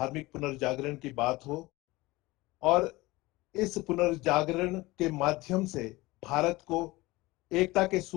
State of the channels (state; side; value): quieter; right; 20.6 dB